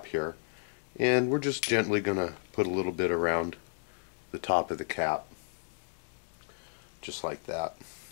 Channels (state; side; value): silent; right; digital silence